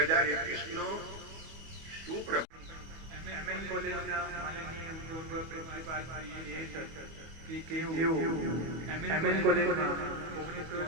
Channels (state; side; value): late; left; 25 ms